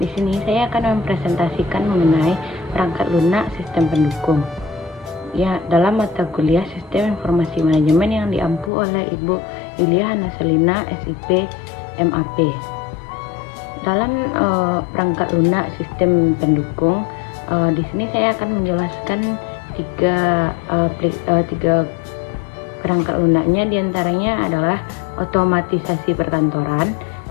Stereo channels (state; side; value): drops out; right; at 8.7 s